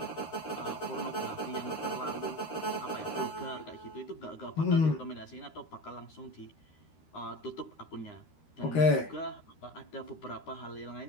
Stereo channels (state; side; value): late; right; 13 ms